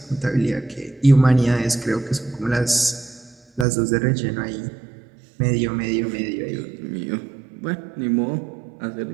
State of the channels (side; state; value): left; drops out; at 3.7 s